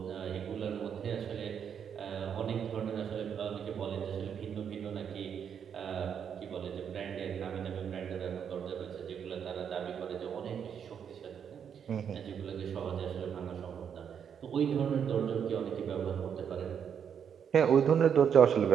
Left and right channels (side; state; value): left; quieter; 7.8 dB